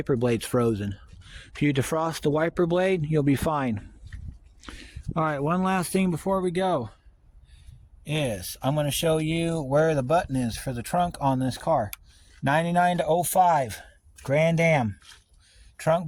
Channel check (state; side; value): identical; both; correlation 1.00